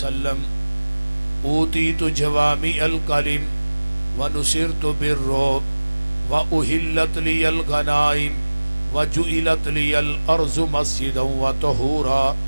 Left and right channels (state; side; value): inverted; both; correlation -1.00